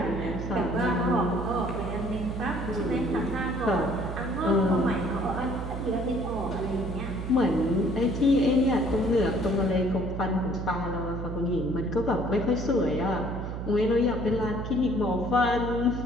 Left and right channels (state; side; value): noise; right; hum, 5 dB below the sound